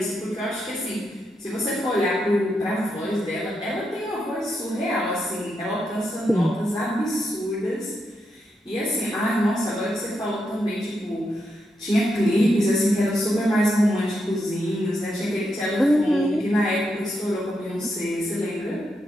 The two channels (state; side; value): normal; both; correlation 0.83